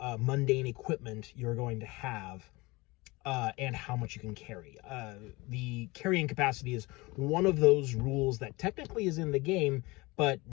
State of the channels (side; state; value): right; quieter; 23.2 dB